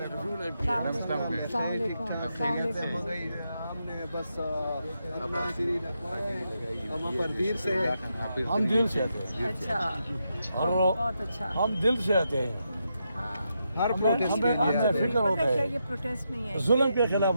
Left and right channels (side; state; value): both; inverted; correlation -0.83